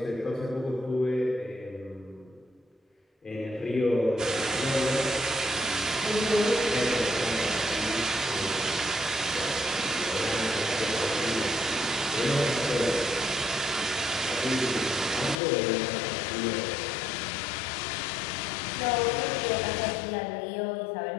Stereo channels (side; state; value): right; drops out; at 15.4 s